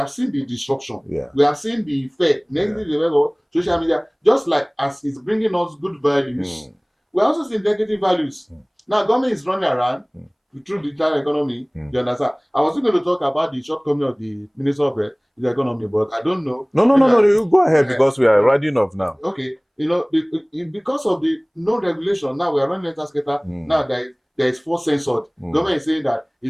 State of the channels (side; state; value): both; identical; correlation 1.00